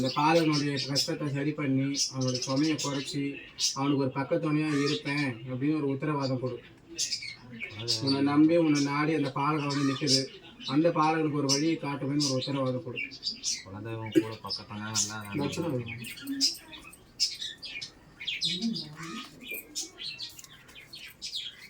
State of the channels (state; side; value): identical; both; correlation 1.00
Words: பாலகனுடைய கஷ்டத்தை சரி பண்ணி அவனுடைய சுமையை குறைச்சி அவனுக்கு ஒரு பக்கத்துணையாக இருப்பேன் அப்படின்னு ஒரு உத்தரவாதம் கொடு. உன்னை நம்பி உன்னை நாடி அந்த பாலகன் வந்து நிற்குது. அந்த பாலகனுக்கு ஒரு வழியை காட்டுவேன்னு ஒரு உத்தரவாதம் கொடு. குலதெய்வம் கூட பக்கத்தான